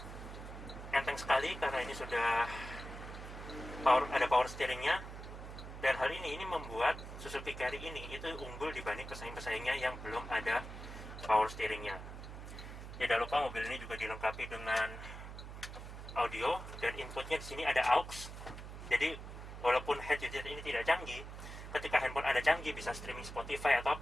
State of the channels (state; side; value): noise; right; hum, 10 dB below the sound